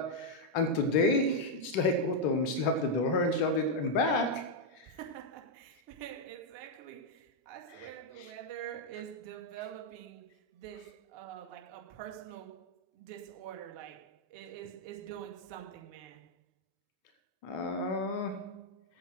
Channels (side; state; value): right; late; 3.5 ms